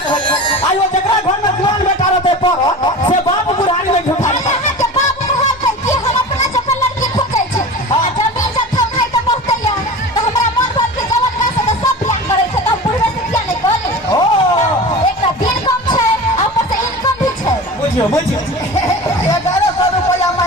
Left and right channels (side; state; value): both; normal; correlation 0.34